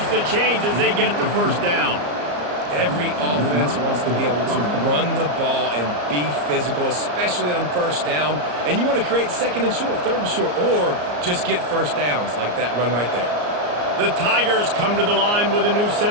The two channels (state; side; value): late; left; 34 ms